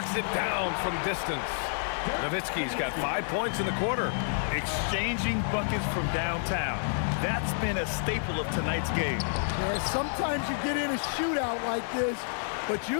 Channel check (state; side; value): silent; right; digital silence